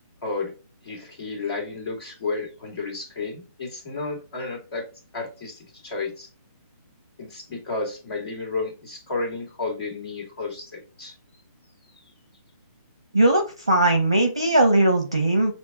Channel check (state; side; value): inverted; both; correlation -0.67